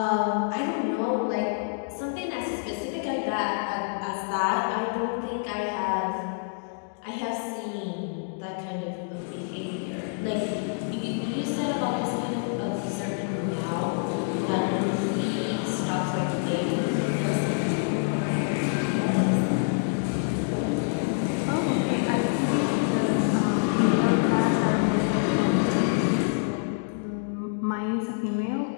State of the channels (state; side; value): silent; right; digital silence